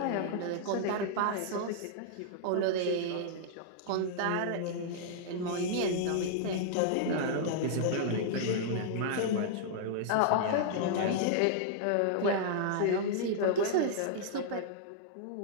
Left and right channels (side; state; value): both; different; correlation -0.01